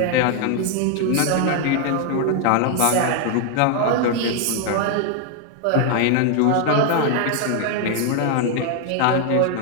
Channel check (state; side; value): different; both; correlation 0.00